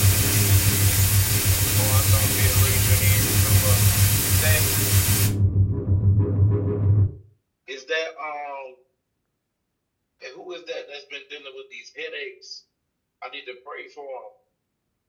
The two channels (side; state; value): both; identical; correlation 1.00